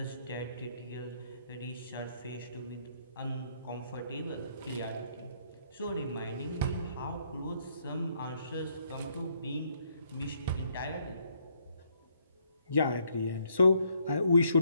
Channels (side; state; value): both; inverted; correlation -0.70